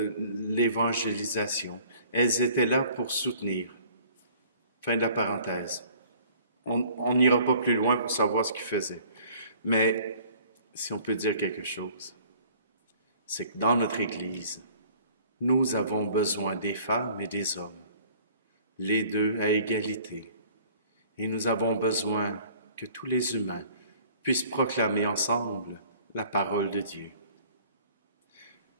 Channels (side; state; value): both; inverted; correlation -0.54